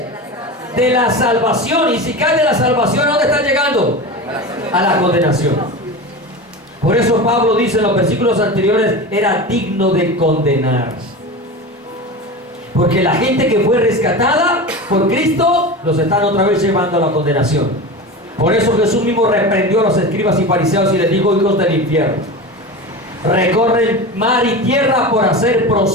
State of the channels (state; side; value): normal; both; correlation 0.27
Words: De la salvación. Y si caes de la salvación, ¿a dónde estás llegando? A la condenación. Por eso Pablo dice en los versículos anteriores, era digno de condenar. Porque la gente que fue rescatada por Cristo, los están otra vez llevando a la condenación. Por eso Jesús mismo reprendió a los escribas y fariseos y les dijo: hijos del infierno, recorren mar y tierra por hacer